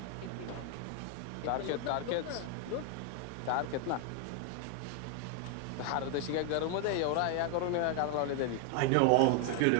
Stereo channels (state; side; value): different; both; correlation 0.00